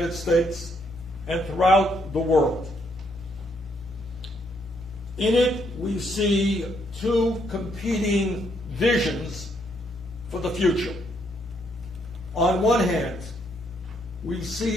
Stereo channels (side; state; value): both; normal; correlation 0.73